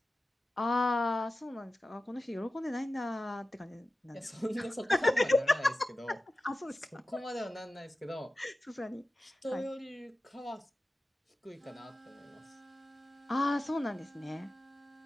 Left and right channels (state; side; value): normal; both; correlation 0.94